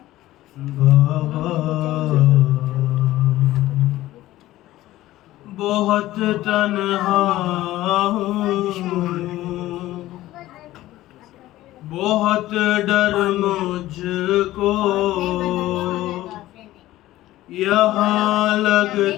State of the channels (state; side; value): quieter; right; 15.7 dB